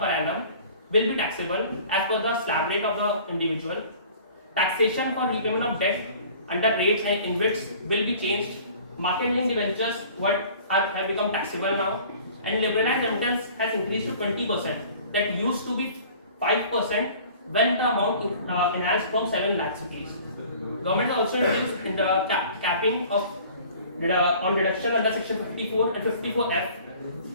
annum will be taxable as per the slab rate of the individual. Taxation for repayment of debt under rates and InvITs will be changed. Market linked debentures have become taxable now, and liberalized remittance has increased to 20%. That used to be 5% when the amount enhanced from 7 lakhs rupees. Government also introduced in the capping of on deduction under section 54 and 54F.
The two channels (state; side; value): inverted; both; correlation -0.48